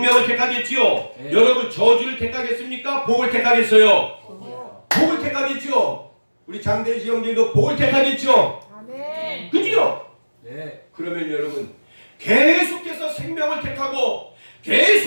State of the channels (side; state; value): both; inverted; correlation -1.00